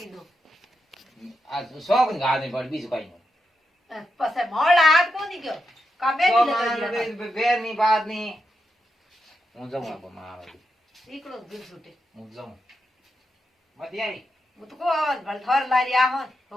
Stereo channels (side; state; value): both; normal; correlation 0.86